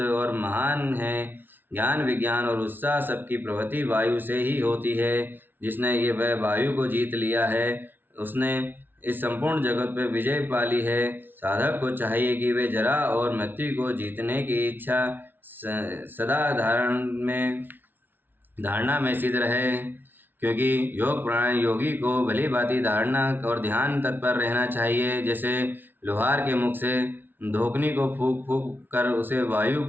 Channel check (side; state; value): left; late; 0.093 ms